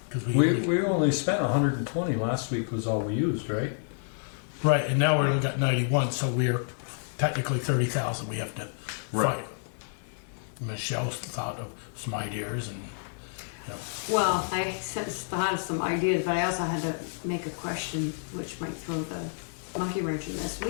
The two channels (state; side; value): silent; right; digital silence